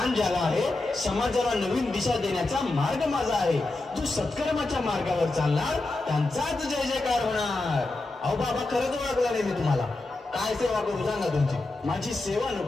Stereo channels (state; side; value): quieter; right; 3.0 dB